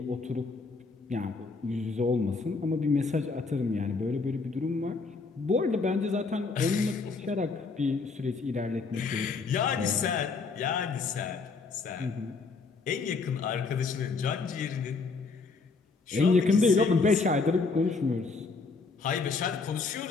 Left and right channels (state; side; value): quieter; right; 4.3 dB